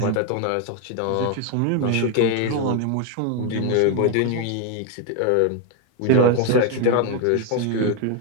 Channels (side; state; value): both; different; correlation 0.01